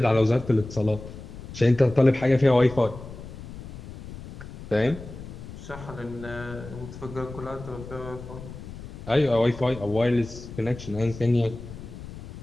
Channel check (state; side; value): noise; left; rumble, 13 dB below the sound